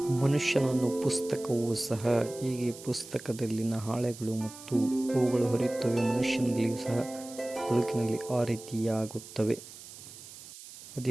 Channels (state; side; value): noise; right; hiss, 16 dB below the sound